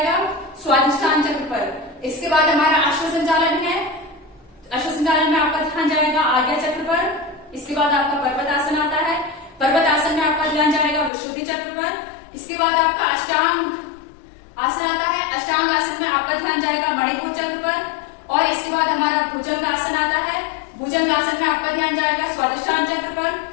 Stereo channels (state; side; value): drops out; right; at 11.1 s